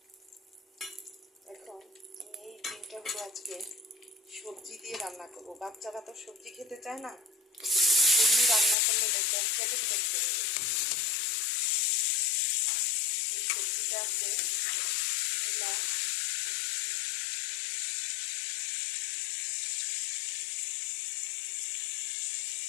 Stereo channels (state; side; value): drops out; right; at 8.8 s